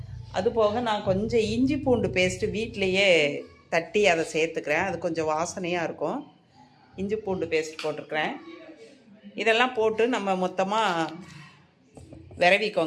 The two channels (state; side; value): identical; both; correlation 1.00